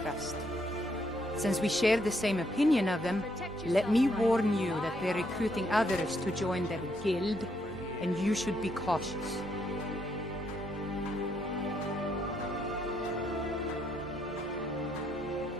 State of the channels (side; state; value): both; normal; correlation 0.74